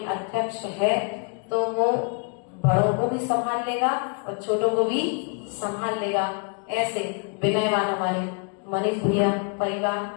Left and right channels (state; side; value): quieter; right; 37.6 dB